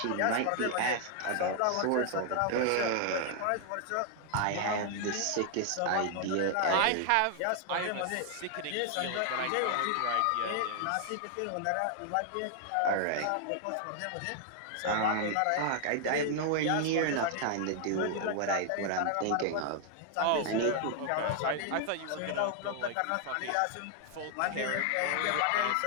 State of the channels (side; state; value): both; different; correlation 0.00